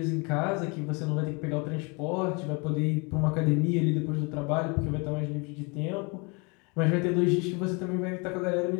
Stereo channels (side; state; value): right; quieter; 30.8 dB